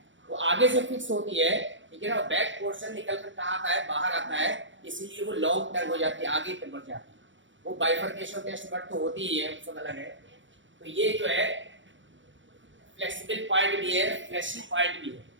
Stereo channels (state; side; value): late; left; 0.55 ms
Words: वो आगे से फिक्स होती है, ठीक है ना, बैक पोर्शन निकल कर कहाँ आता है, बाहर आता है, इसीलिए वो लॉन्ग टंग हो जाती है, आगे तक बढ़ जाती है। वो बाइफर्केशन टेस्ट बट तो होती ही है, सब अलग है। तो ये जो है फ्लेक्सिबल पार्ट भी है, फ्लैशी पार्ट भी है,